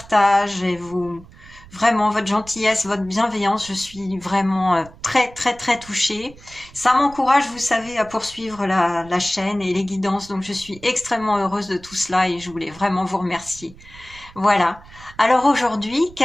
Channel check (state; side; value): noise; right; rumble, 21 dB below the sound